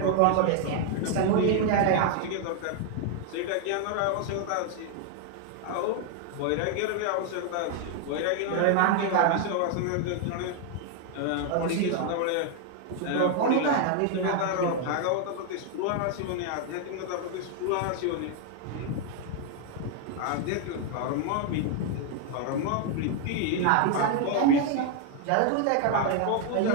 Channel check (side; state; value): both; different; correlation 0.00